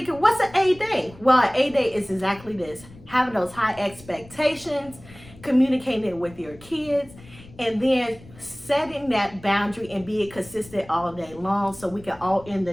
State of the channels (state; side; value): noise; left; rumble, 21 dB below the sound